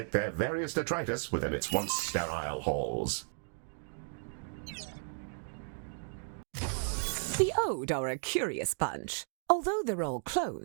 their various detritus within its once sterile halls. The Ode are a curious bunch. Although they're all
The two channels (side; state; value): left; silent; digital silence